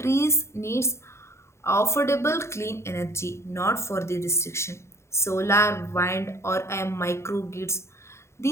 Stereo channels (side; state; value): right; late; 0.13 ms